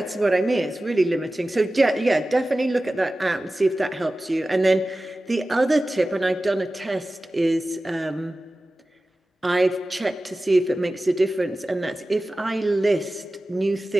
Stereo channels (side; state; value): both; normal; correlation 0.96